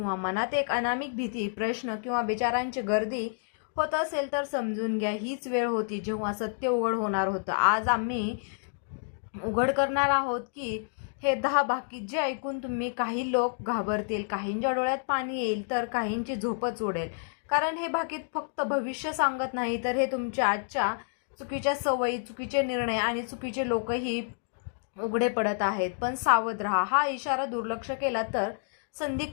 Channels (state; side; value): silent; right; digital silence